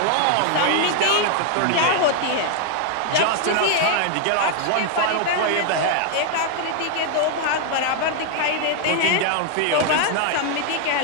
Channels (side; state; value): both; different; correlation 0.00